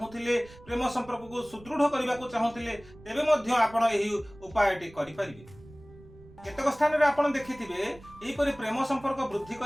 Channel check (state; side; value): noise; right; rumble, 22 dB below the sound